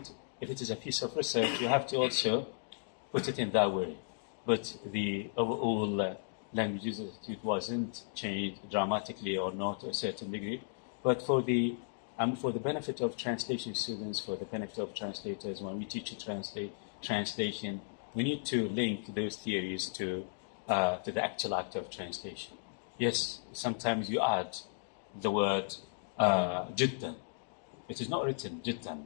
if it is a piece of research, you have to also put it in that way. But the overall language use attitude wasn't changed dramatically or not to a certain degree. But for the benefit of translation students, for the benefit of translators, when we teach translation, we need to link those theories to the actual act of translation. Yes, sometimes you add the word jiddan. It is not written jiddan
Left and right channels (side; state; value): right; silent; digital silence